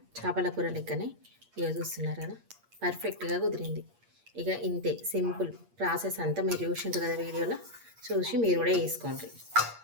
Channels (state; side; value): late; left; 8.6 ms